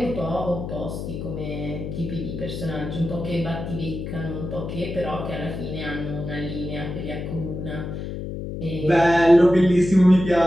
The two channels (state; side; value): noise; left; hum, 6 dB below the sound